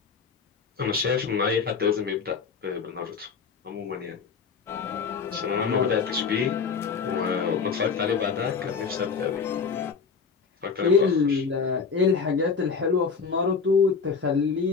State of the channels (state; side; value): quieter; right; 5.5 dB